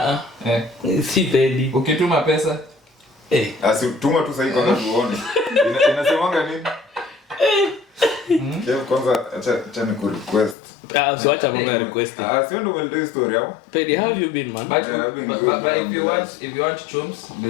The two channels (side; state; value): right; drops out; at 10.6 s